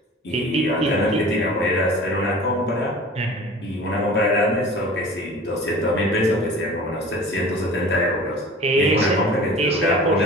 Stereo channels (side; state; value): both; normal; correlation 0.41